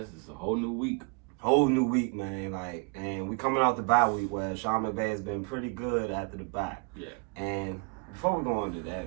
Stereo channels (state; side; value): quieter; left; 32.5 dB